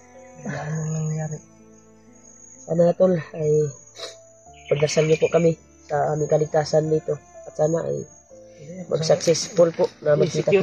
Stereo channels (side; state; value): both; identical; correlation 1.00